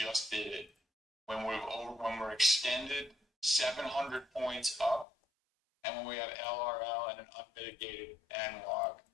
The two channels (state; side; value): drops out; right; at 5.1 s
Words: did it when we're extended 700 points up, and when we have LRL and an unmitigated N log